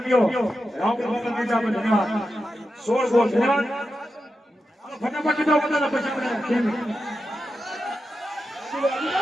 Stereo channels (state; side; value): normal; both; correlation 0.89